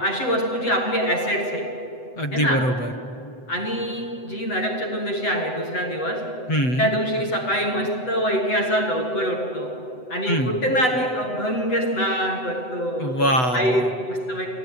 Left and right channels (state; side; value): late; right; 7.9 ms